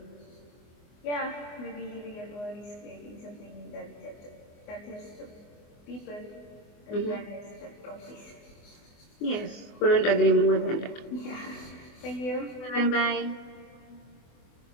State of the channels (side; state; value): right; late; 24 ms